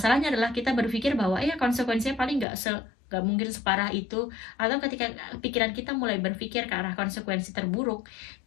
adalah kita berpikir bahwa ya konsekuensinya paling nggak mungkin separah itu, atau ketika pikiran kita mulai berpikir ke arah konsekuensi terburuk,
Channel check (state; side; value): drops out; right; at 2.5 s